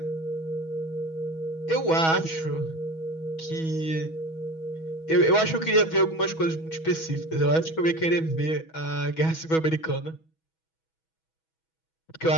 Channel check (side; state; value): right; late; 6.2 ms